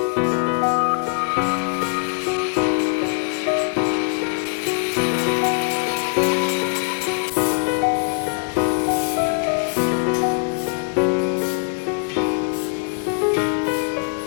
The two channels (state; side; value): quieter; right; 37.0 dB